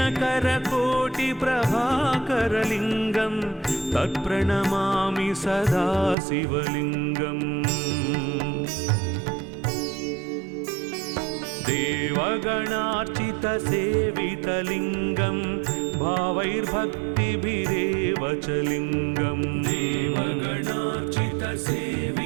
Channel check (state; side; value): drops out; left; at 6.2 s